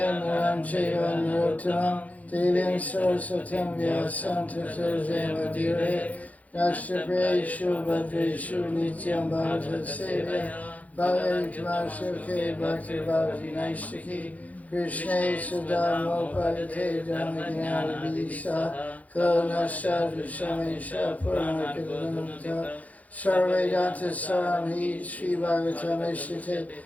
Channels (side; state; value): right; late; 0.073 ms